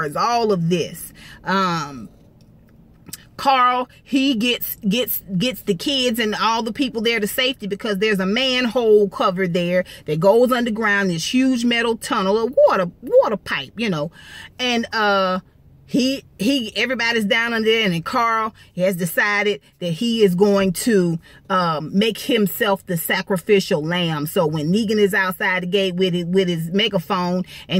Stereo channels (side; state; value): both; identical; correlation 1.00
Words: all of this. Carl, he gets the kids and all the people there to safety because there's a manhole cover there that goes underground, this huge metal tunnel, a water pipe, you know, and everybody's down under there, and then Carl has decided that he is going to make himself the sacrificial lamb. So when Negan is outside the gate with his megaphone